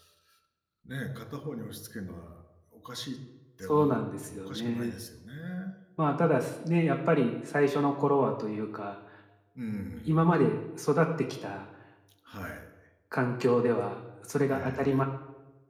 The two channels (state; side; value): identical; both; correlation 1.00